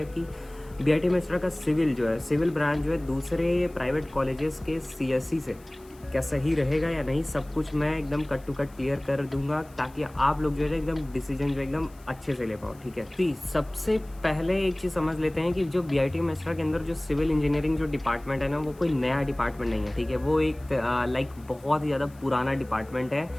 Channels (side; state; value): left; noise; hiss, 27 dB below the sound